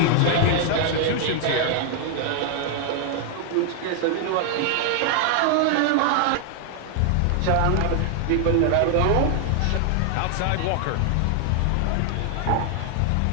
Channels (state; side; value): different; both; correlation 0.00